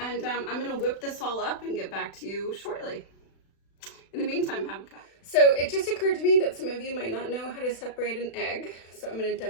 I'm gonna whip this all up and get back to you shortly. In the meantime, have a cup. So it just occurred to me that some of you might not know how to separate an egg, so I'm gonna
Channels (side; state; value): right; late; 36 ms